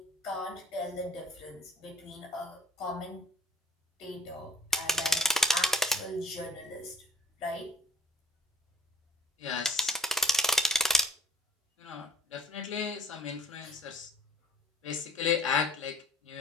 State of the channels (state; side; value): normal; both; correlation 0.52